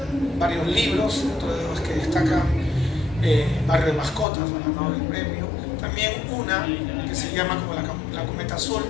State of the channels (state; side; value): drops out; right; at 4.2 s